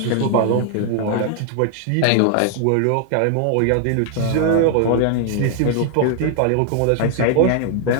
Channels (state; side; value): different; both; correlation 0.00